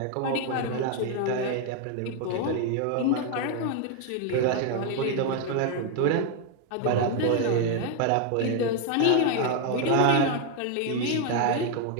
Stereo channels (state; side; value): different; both; correlation 0.01